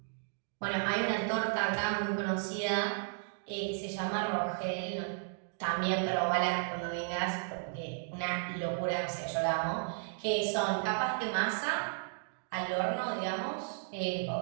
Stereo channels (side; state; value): left; silent; digital silence